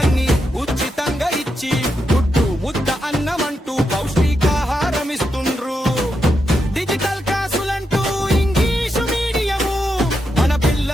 ఉచితంగా ఇచ్చి గుడ్డు ముద్ద అన్నమంటూ పౌష్టికాహారం ఇస్తుండ్రు. డిజిటల్ క్లాసులంటూ ఇంగ్లీషు మీడియము మన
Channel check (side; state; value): both; normal; correlation 0.84